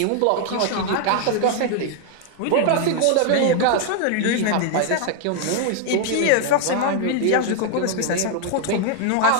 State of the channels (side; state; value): both; different; correlation 0.00